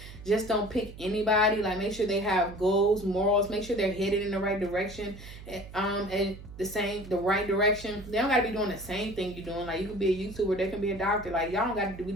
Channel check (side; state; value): right; noise; hum, 15 dB below the sound